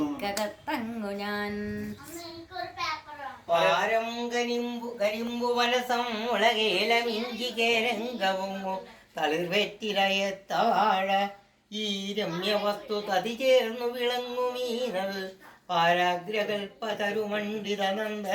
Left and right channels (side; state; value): both; identical; correlation 1.00